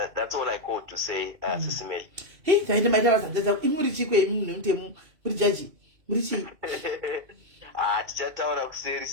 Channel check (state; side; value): late; left; 3.0 ms